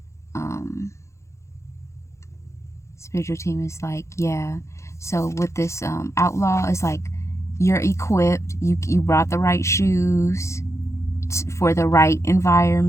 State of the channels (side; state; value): right; late; 0.14 ms